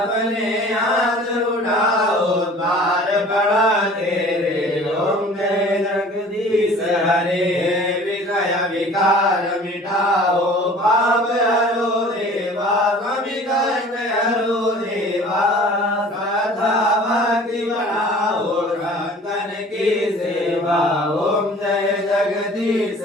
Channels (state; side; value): normal; both; correlation 0.47